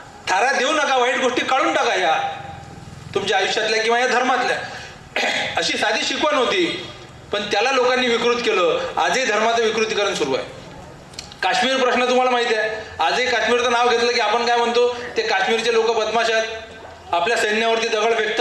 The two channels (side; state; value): both; identical; correlation 1.00